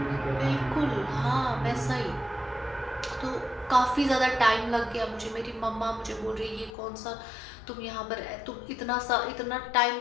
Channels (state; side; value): drops out; right; at 6.7 s